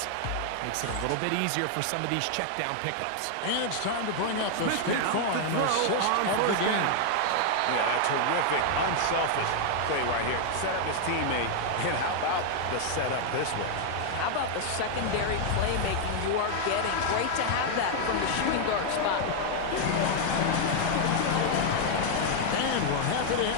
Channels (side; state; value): both; different; correlation 0.00